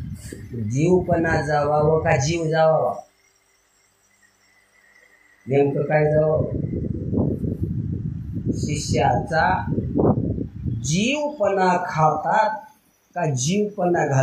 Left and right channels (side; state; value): both; identical; correlation 1.00